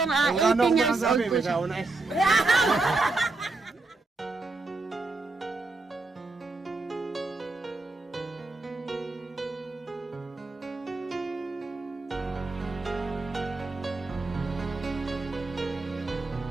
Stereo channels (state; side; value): quieter; left; 3.5 dB